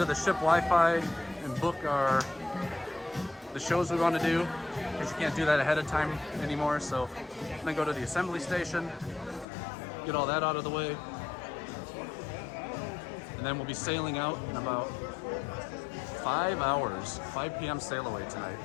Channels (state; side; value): drops out; right; at 9.5 s